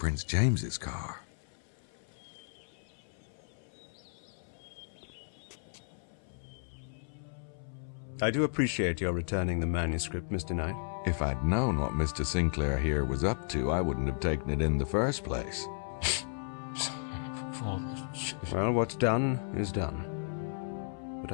James's car. I do appreciate your returning the manuscript, Mr. Knight. If I'd known what Mr. Sinclair here was up to, I wouldn't have taken it in the first place. Well, what's done is done. But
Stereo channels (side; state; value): right; silent; 55 dB below the other